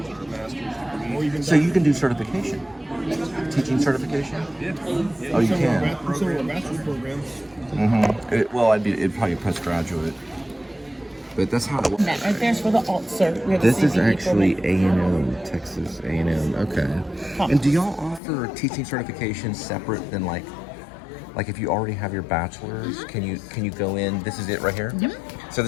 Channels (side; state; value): right; drops out; at 18.2 s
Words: So you can do certification, teaching certification. Yeah. Oh, you can. Some of our bachelor's programs. Well, it'd probably postgraduate, but that's how it works. That right there's for the alt cert. We have This a is CPE actually program. A&M, Texas A&M. Okay. And do y'all offer teaching certification separate than like if you already have your bachelor's, can you go in? This is it right here. Yep. So